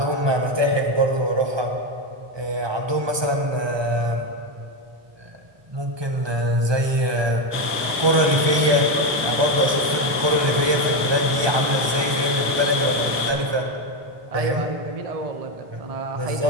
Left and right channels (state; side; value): late; left; 1.2 ms